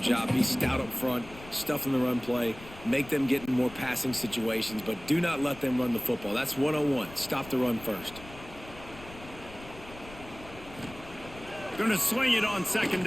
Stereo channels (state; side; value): noise; left; rumble, 17 dB below the sound